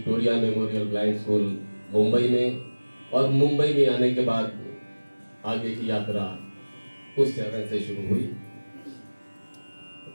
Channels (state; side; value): inverted; both; correlation -1.00